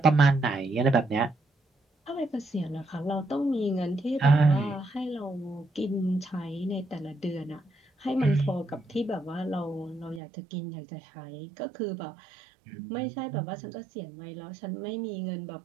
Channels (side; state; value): left; drops out; at 10.2 s